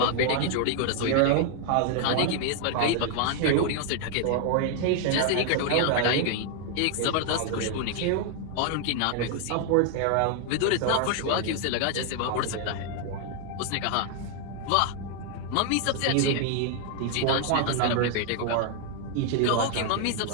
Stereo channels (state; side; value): different; both; correlation 0.00